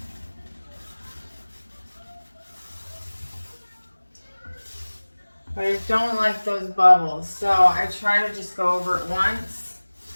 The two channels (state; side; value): inverted; both; correlation -1.00